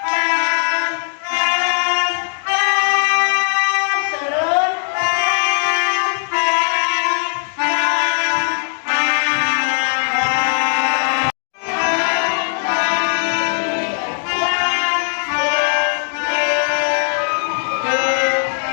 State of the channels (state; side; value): silent; right; 63 dB below the other